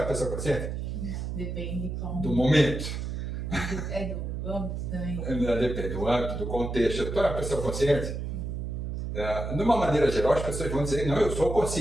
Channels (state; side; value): noise; right; hum, 4 dB below the sound